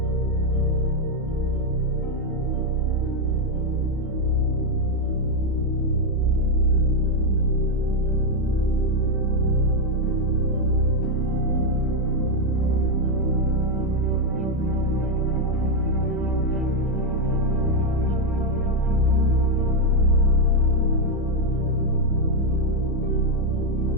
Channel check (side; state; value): both; normal; correlation 0.02